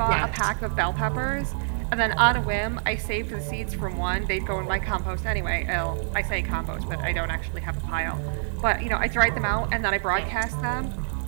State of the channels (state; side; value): silent; left; digital silence